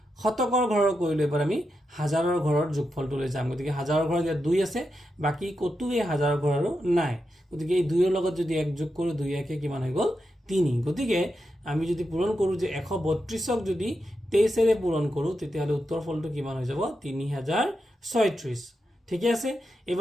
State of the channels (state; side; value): normal; both; correlation 0.87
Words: শতকৰ ঘৰৰ কৰিলো এবাৰ আমি হাজাৰৰ ঘৰৰ যোগফলটো লৈ যাম গতিকে হাজাৰৰ ঘৰত ইয়াত 2 আছে বাকি কতো এই হাজাৰৰ ঘৰৰো নাই গতিকে এই 2 ৰ লগত যদি 1 যোগ কৰো 2 1 কে কিমান হৈ গল 3 গতিকে আমি যদি পূৰণ কৰো যে 132ক যদি 23 ৰে পূৰণ কৰো তেতিয়াহলে উত্তৰ ফলটো কিমান হৈ যাব 3036 ঠিক আছে